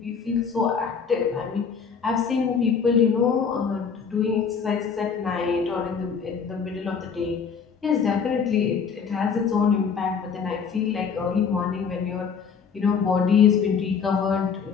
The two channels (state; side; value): quieter; right; 6.2 dB